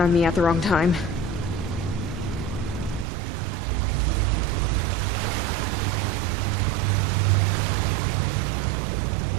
on me at the wrong time.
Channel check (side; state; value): left; drops out; at 3.1 s